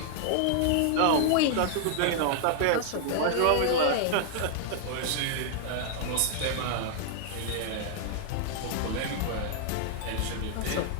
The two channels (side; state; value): both; different; correlation 0.00